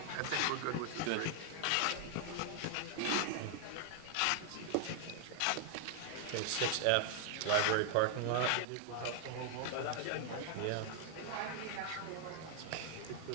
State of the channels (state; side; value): different; both; correlation 0.00